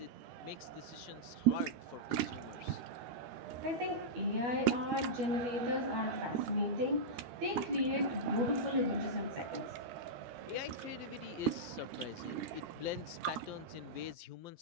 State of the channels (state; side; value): late; left; 12 ms